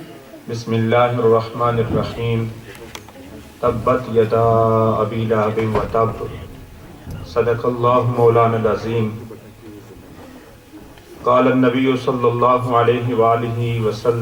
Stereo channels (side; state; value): both; identical; correlation 1.00